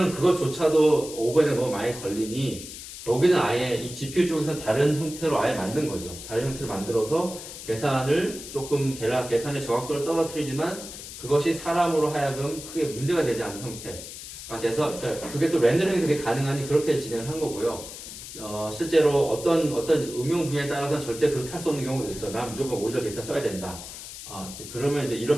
그것조차도 오버헤드가 너무 많이 걸리니 여기는 아예 이 GPU 쪽에서 다른 형태로 아예 만든 거죠. 다른 형태로 만들어서 계산을 조금 계산의 정확도를 떨어뜨리지만 그것이 사람으로 하여금 크게 문제가 되지 않는 형태가 돼서 그러니까 그게 또 렌더링이 되게 가능하니 그렇게 진행을 한 거고요. 실제로 어떤 응용 분야에 따라서는 절대 그렇게 할 수 없는 경우도 있죠. 난 무조건 오리지널 데이터 써야 된다. 그러면 이제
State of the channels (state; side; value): noise; left; hiss, 12 dB below the sound